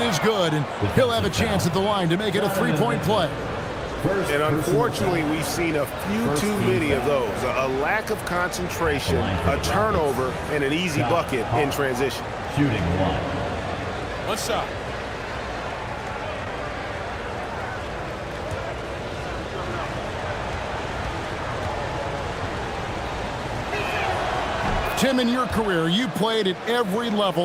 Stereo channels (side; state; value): both; identical; correlation 1.00